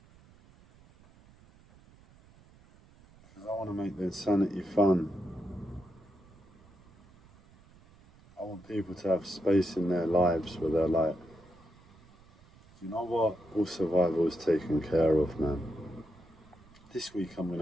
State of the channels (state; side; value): noise; right; rumble, 26 dB below the sound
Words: Because I want to make the insanity fun. I want people to have space in their lives where they're like, you know what, all survival is taken care of, man. This week I'm going